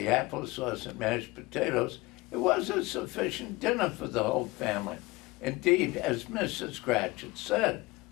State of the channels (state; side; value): quieter; right; 22.0 dB